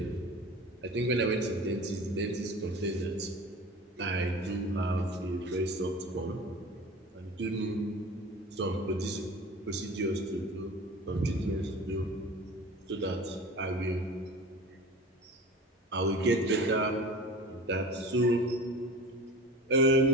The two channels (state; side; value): normal; both; correlation 0.37